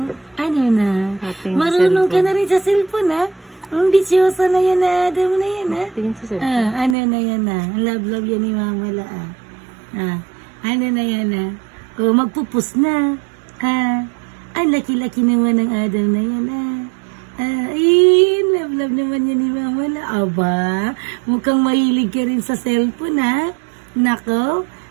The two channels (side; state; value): left; drops out; at 7.0 s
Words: Ano na? Marunong ka na rin sa cellphone, ha? Ang bisyosa na yan na Adam na yan, ha? Ano na yan, ha? Love yan ni Mama La, ano na yan, ha? O, magpupus na. Ang laki-laki naman ng Adam na yan, ha? Ay, love naman yan ni Mama La. Aba, mukhang mahilig ka rin sa cellphone, ha? Nako,